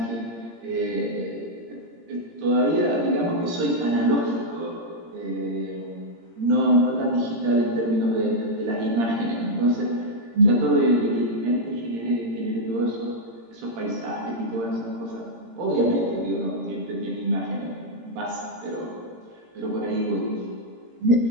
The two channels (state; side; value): late; left; 17 ms